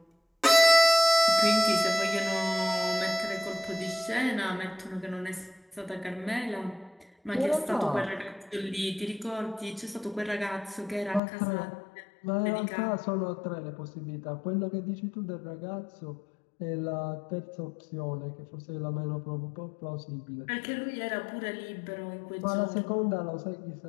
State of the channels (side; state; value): right; drops out; at 11.2 s